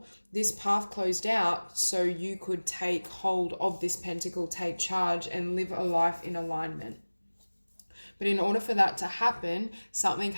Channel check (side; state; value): both; inverted; correlation -1.00